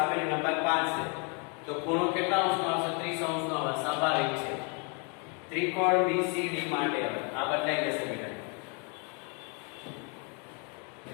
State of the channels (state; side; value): quieter; right; 35.4 dB